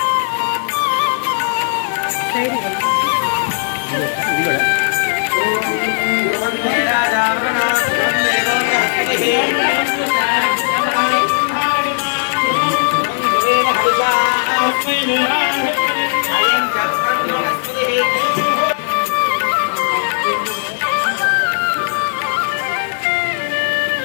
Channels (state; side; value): silent; right; 66 dB below the other